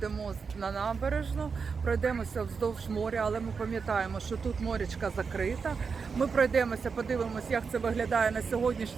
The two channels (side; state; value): left; quieter; 5.4 dB